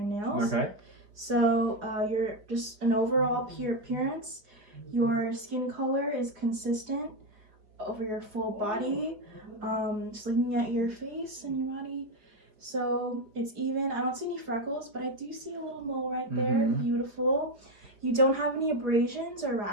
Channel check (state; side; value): late; left; 5.0 ms